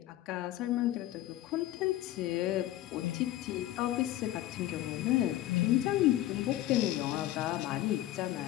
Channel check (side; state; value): right; quieter; 14.3 dB